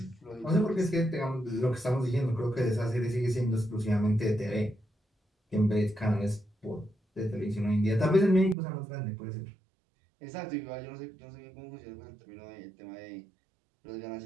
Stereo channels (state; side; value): drops out; left; at 8.6 s